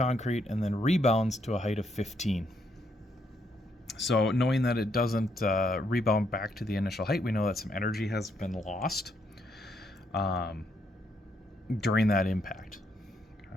and then rebounds to a height of 15. So knowing that it doesn't rebound back to the initial height, we know that some energy has been lost during that impact.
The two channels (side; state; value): both; normal; correlation 0.75